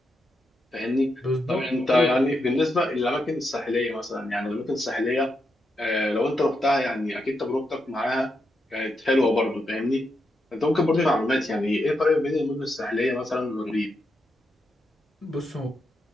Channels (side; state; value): both; normal; correlation 0.84